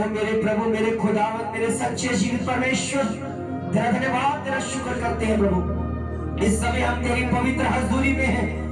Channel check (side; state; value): both; identical; correlation 1.00